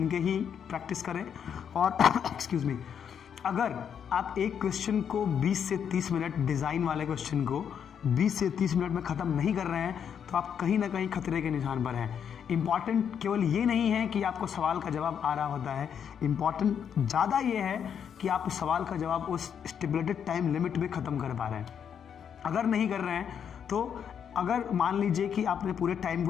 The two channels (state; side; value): quieter; right; 8.0 dB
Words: के ही प्रैक्टिस करें। और एक्सक्यूज़ मी, अगर आप एक क्वेश्चन को 20 से 30 मिनट, डिज़ाइन वाले क्वेश्चन को 20 से 30 मिनट में ख़त्म नहीं कर रहे हैं तो आप कहीं ना कहीं खतरे के निशान पर हैं। इम्पॉर्टेंट केवल ये नहीं है कि आपको सवाल का जवाब आ रहा होता है, इम्पॉर्टेंट ज़्यादा ये है कि आप उस सवाल का जवाब उस स्टिपुलेटेड टाइम लिमिट में ख़त्म कर पा रहे हैं। अगर नहीं कर रहे हैं तो अगर मान लीजिए कि आपने पूरे टाइम